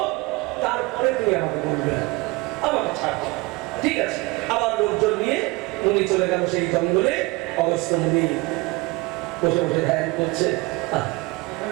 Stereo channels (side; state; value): left; quieter; 23.9 dB